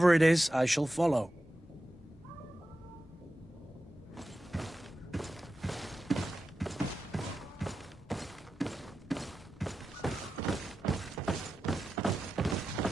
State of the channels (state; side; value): normal; both; correlation 0.92